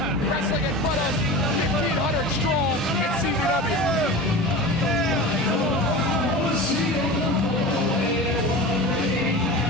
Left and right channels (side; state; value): both; normal; correlation 0.32